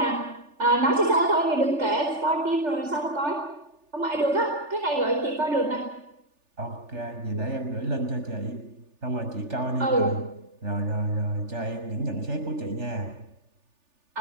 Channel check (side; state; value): left; late; 3.4 ms